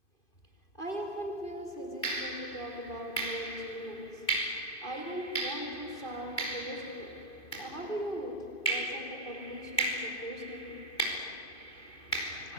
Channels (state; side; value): late; right; 2.5 ms